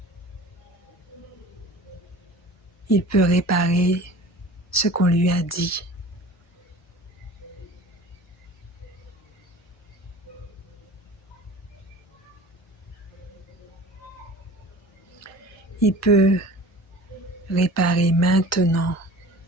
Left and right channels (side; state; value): both; normal; correlation 0.41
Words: Il peut réparer ce qu'on lui a dit. Il peut réparer maintenant